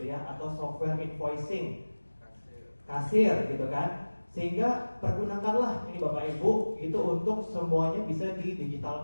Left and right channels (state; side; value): inverted; both; correlation -1.00